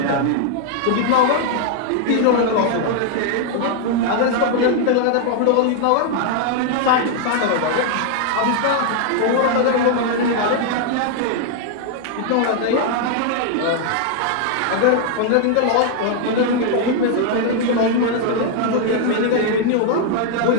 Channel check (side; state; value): both; different; correlation 0.00